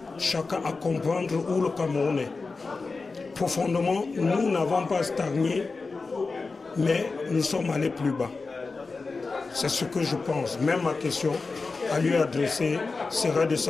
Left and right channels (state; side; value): quieter; right; 4.1 dB